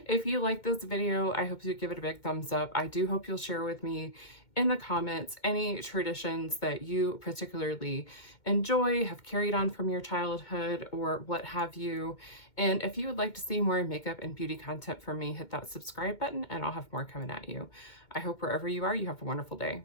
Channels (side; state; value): right; late; 2.2 ms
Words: If you like this video, I hope you give it a big thumbs up. I do hope you'll share with me in the comments any traditions that you particularly enjoy, have carried on from your childhood, or what have you. And if you would like to see more makeup and beauty content from me, hit that subscribe button and I'll have more coming at you. I hope wherever you are, you have a wonderful day.